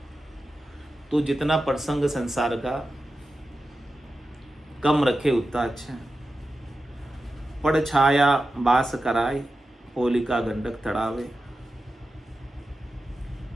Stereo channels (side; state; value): both; normal; correlation 0.92